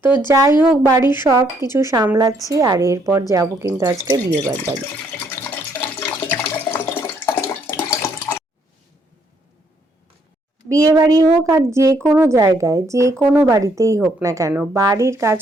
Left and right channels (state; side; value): normal; both; correlation 0.70